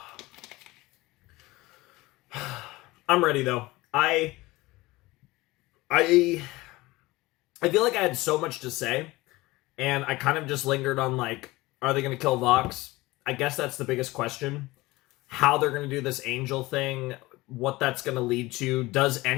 I'm ready though. I feel like I had so much to say. And I kind of just lingered on, like, are they going to kill Vox? I guess that's the biggest question. How they're going to do this angel thing, what that's going to lead to. Does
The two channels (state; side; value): quieter; right; 20.3 dB